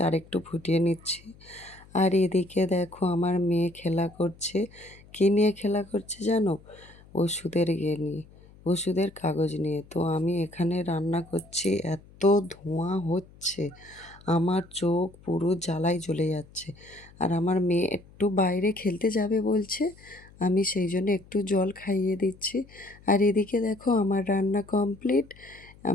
আরেকটু ফুটিয়ে নিচ্ছি। আর এদিকে দেখো আমার মেয়ে খেলা করছে। কী নিয়ে খেলা করছে জানো? ওষুধের ইয়ে নিয়ে, ওষুধের কাগজ নিয়ে। তো আমি এখানে রান্না করছি, এত ধোঁয়া হচ্ছে, আমার চোখ পুরো জ্বালায় জ্বলে যাচ্ছে। আর আমার মেয়ে একটু বাইরে খেলতে যাবে বলছে, আমি সেই জন্য একটু জল খাইয়ে দিচ্ছি। আর এদিকে দেখো আমার রান্না কমপ্লিট।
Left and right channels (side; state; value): left; noise; hum, 24 dB below the sound